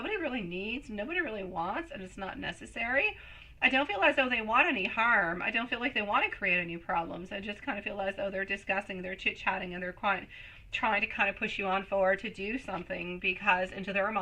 really needs, nobody really wants, and it's not necessary. I don't feel as though they want any harm. I don't feel like they want to create any problems. I just kind of feel as though they're discussing, they're chit-chatting, and they're quite trying to kind of push you on forward to do something, because into their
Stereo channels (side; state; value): both; identical; correlation 1.00